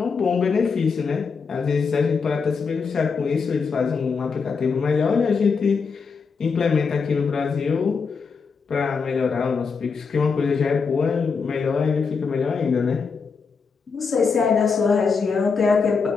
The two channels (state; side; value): quieter; right; 5.3 dB